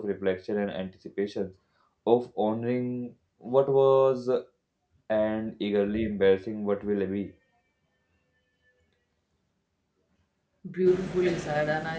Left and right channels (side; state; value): both; identical; correlation 1.00